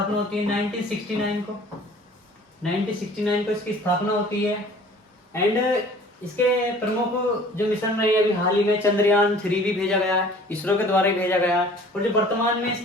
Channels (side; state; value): both; normal; correlation 0.49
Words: को। 1969 को इसकी स्थापना होती है। एंड इसके प्रमुख जो मिशन रहे अभी हाल ही में चंद्रयान 3 भी भेजा गया है, इसरो के द्वारा ही भेजा गया है। और जो वर्तमान में